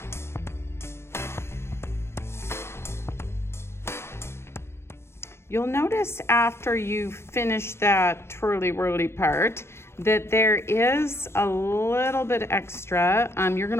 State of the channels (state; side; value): late; right; 0.12 ms